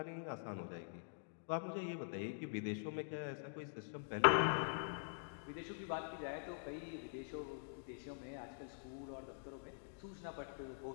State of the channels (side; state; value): right; silent; digital silence